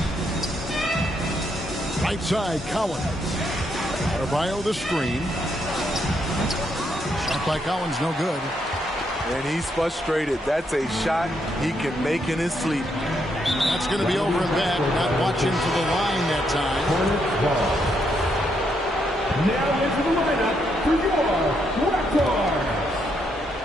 Right side, Collins. Adebayo the screen. Shot by Collins, no good. And he's frustrated. That's a shot he can make in his sleep. That's going to be over and back. Not watching for the line that time. Now into the lineup for your Raptors.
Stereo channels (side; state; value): both; normal; correlation 0.77